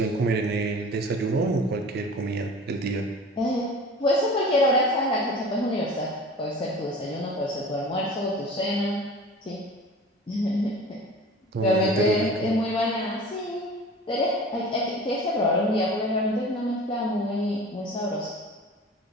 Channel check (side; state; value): both; normal; correlation 0.40